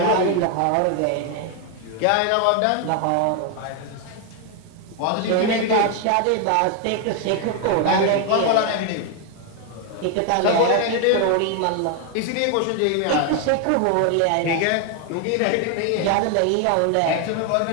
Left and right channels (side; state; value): both; different; correlation 0.01